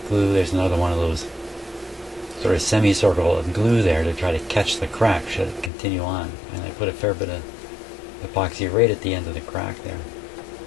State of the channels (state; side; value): drops out; right; at 5.7 s